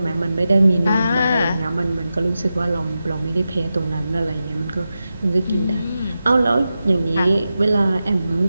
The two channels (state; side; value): inverted; both; correlation -0.91